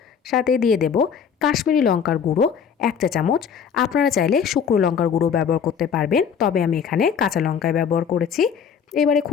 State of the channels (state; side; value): quieter; right; 7.2 dB